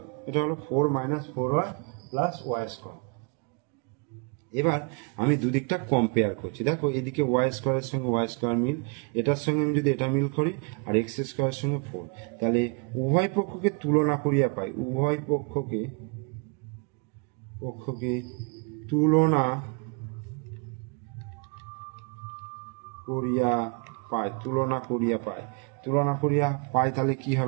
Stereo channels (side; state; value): left; quieter; 33.8 dB